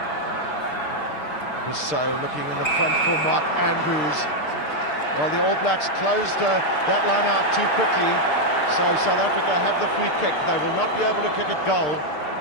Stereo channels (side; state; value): right; late; 6.6 ms